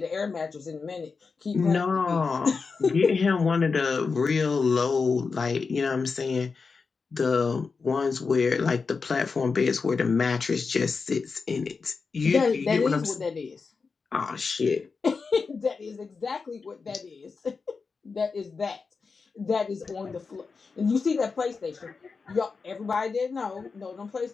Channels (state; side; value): quieter; right; 4.8 dB